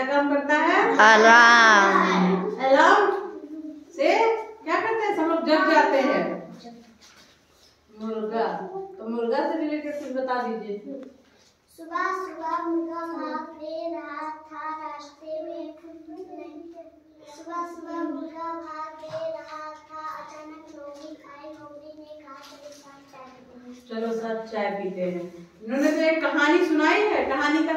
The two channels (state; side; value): identical; both; correlation 1.00